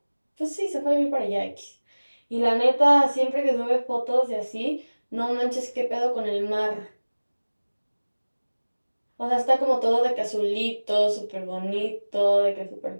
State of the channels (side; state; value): both; inverted; correlation -1.00